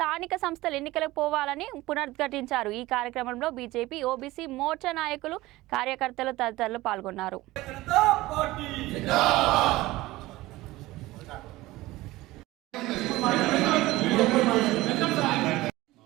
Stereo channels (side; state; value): left; quieter; 18.5 dB